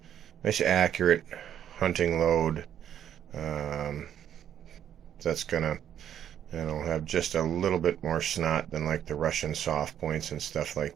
accurate hunting load. That's gonna have just a little bit more snot than like the Russian soft points and stuff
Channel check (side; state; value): left; quieter; 9.9 dB